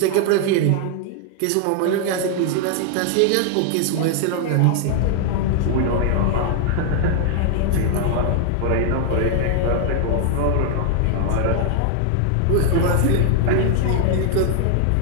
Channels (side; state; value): both; different; correlation 0.00